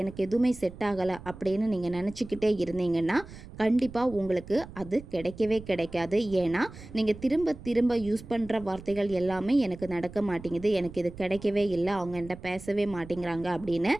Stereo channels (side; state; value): right; noise; rumble, 16 dB below the sound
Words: எதுவுமே செட் ஆகலை அப்படின்னு நீங்கள் நினச்சிக்கிட்டே இருந்தீங்கன்னா கண்டிப்பாக உங்களுக்கு அது கிடைக்கவே கிடைக்காது. ஏன்னா நீங்கள் திரும்ப யூஸ் பண்ணுற வார்த்தைகள் எல்லாமே எனக்கு நடக்க மாட்டேங்குது, எனக்கு இது கிடைக்கவே இல்லை, அவங்க என்கிட்ட பேசவே மாட்டேங்கிறாங்க அப்படின்னு